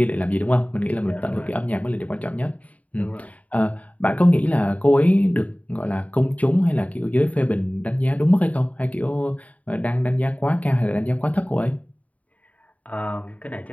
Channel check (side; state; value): right; late; 0.070 ms